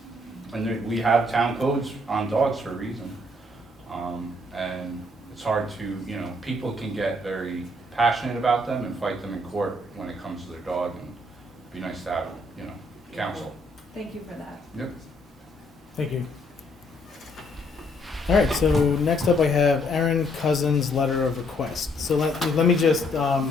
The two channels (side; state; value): both; normal; correlation 0.68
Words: And we have town codes on dogs for a reason. And it's hard to, people can get very passionate about them and fight them in court when it comes to their dog, and it'd be nice to have, counsel. Thank you for that. Yep. Thank you. All right, so next up I have Aaron Cousins' letter of request. So let me just